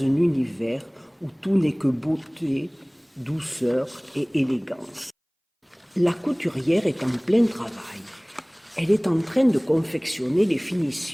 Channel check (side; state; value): both; identical; correlation 1.00